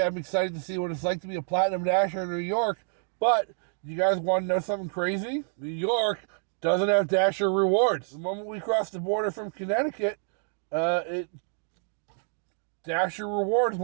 I'm excited to see what it's like to be a Platinum Dasher in New York, but you guys want to know something crazy? New York doesn't have Dasher rewards. The moment we crossed the border from Connecticut, Dasher rewards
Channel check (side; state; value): left; silent; 59 dB below the other